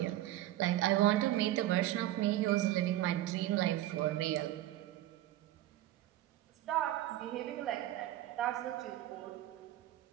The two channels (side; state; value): left; quieter; 14.3 dB